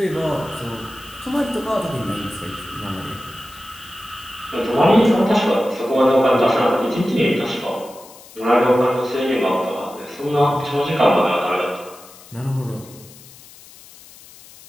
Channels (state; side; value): noise; left; hiss, 21 dB below the sound